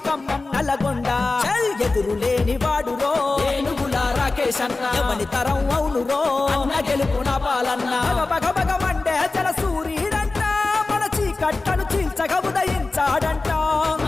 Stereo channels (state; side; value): quieter; right; 3.5 dB